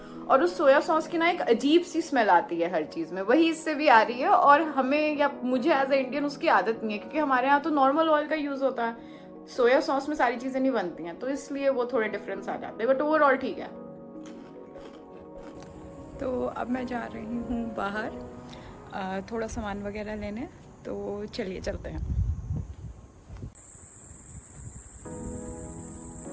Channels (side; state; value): both; identical; correlation 1.00